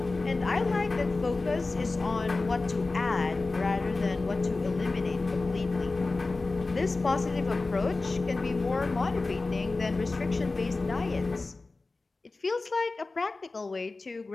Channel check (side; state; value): right; quieter; 3.5 dB